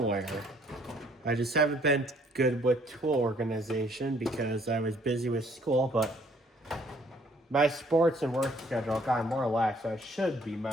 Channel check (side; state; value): both; normal; correlation 0.62